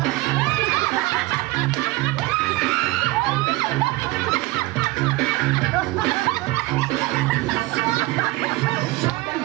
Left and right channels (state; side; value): quieter; left; 20.4 dB